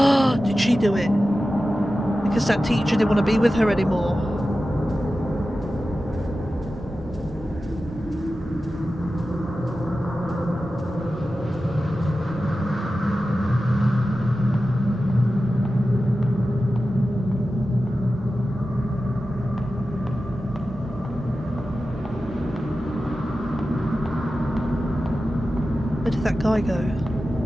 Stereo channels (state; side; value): normal; both; correlation 0.93